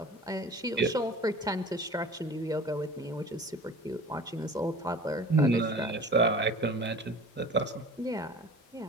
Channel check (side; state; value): both; normal; correlation 0.41